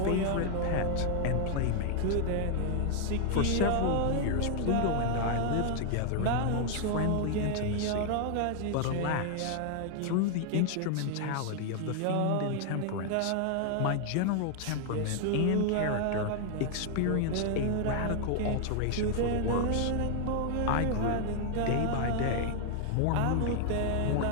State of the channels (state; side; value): different; both; correlation 0.00